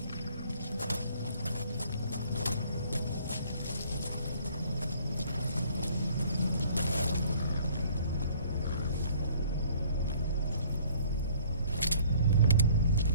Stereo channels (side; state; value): both; inverted; correlation -0.57